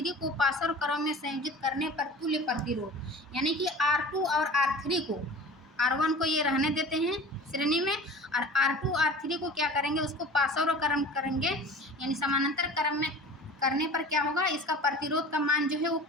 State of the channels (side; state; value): both; normal; correlation 0.40